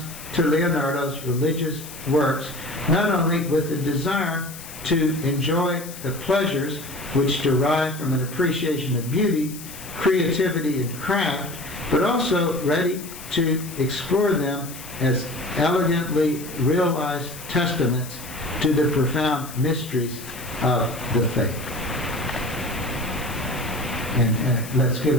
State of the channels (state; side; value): noise; left; hiss, 14 dB below the sound